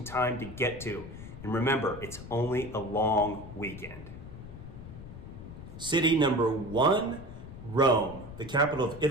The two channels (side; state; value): left; noise; rumble, 13 dB below the sound